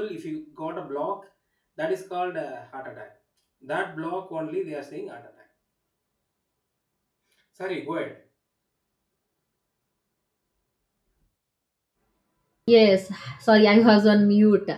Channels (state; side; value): identical; both; correlation 1.00